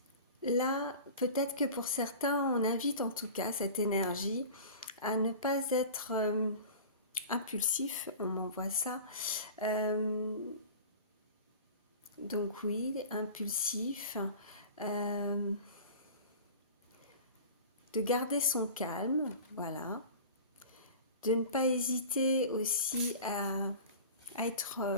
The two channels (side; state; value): both; inverted; correlation -0.37